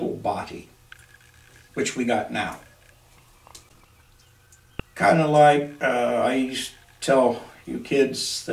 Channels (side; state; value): both; identical; correlation 1.00